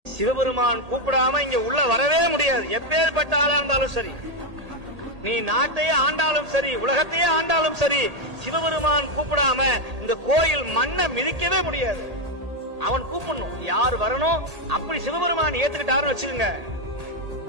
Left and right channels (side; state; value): left; late; 1.8 ms